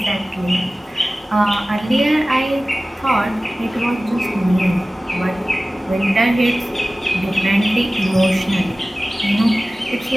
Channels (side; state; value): both; normal; correlation 0.97